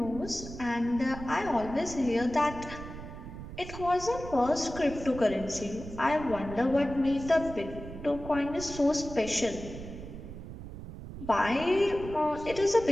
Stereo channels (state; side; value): noise; right; rumble, 11 dB below the sound